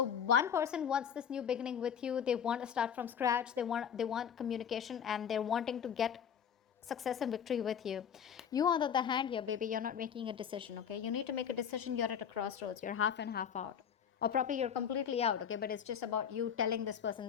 one person wants this new beginning with you. They want to start from scratch. They want communication, and they're wanting to get success and victory with you. You, on the other hand, here, baby, you're not making a decision. Okay, you need to make a decision. You're at a crossroads. You're half and half out, or probably you're completely out. Okay, but it's just about you telling this person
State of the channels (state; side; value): quieter; right; 8.0 dB